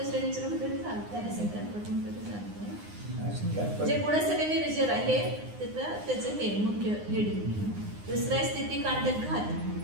म्हटलं तरी चालतंय, असंख्यात पट म्हटलं तरी चालतंय. असंख्यात जे गुणश्रेणी निर्जर आहे त्याचं हे मुख्य हेडिंग. दुसरं आहे स्थिती कांडक घात.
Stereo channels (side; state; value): left; late; 9.7 ms